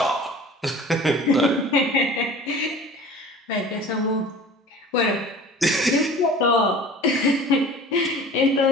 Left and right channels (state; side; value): normal; both; correlation 0.42